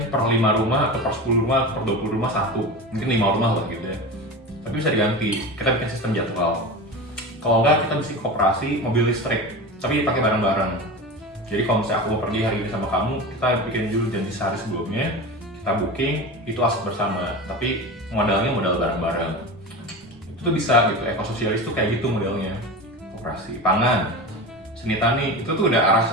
per 5 rumah atau per 10 rumah atau per 20 rumah satu. Mungkin 5 rumah lah gitu ya. Tapi bisa diganti. Kita bikin sistem jadwal. Kalau enggak kita bisa koperasi mobil listrik, tapi pakai bareng-bareng. Jadi kalau misalnya aku mau pergi hari ini sama kamu, kita bikin dulu janji sehari sebelumnya, kita booking, itu aset bersama. Tapi modalnya modal bareng-bareng. Itu tuh bisa gitu. Ekososialis tuh kayak gitu modelnya. Koperasi, pangan, seni tani, itu tuh udah arah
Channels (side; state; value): both; normal; correlation 0.28